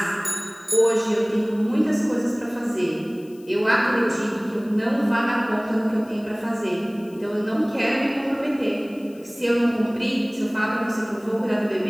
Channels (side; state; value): left; noise; hiss, 27 dB below the sound